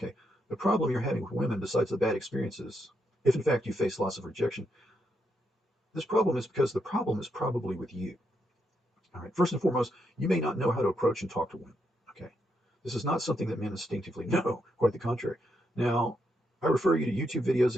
the problem you're having with women, besides the bad experiences, if in fact you face loss of rejection, this problem is because the problem is probably with you. All right, first and foremost, you may not know how to approach and talk to women. Okay, this is not something that men instinctively know. Quite the contrary. Now, I refer you to YouTube videos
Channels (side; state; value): both; normal; correlation 0.80